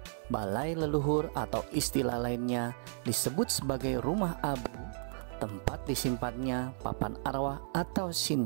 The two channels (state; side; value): silent; left; 55 dB below the other